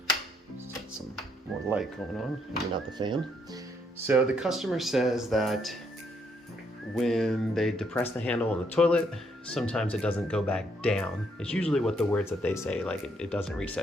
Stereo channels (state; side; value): normal; both; correlation 0.72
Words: Some more light going on, maybe not the fan. So the customer says that when they depress the handle on the toilet, sometimes it doesn't go back down. It's usually what the words that they say, like it doesn't